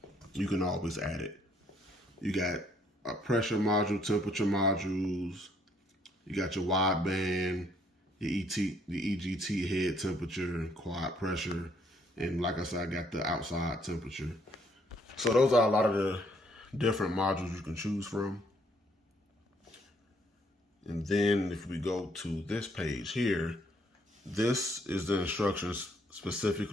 you can always add it. You got a pressure module, temperature modules, you got your wideband, the EGT head temperature, quad pressure, and like I said, I got the outside temperature. So those are a lot of the different modules you can choose from. And then if we go to this page here, this is the instructions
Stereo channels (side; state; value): both; normal; correlation 0.67